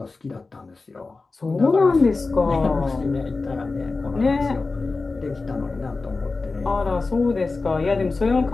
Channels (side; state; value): right; quieter; 3.8 dB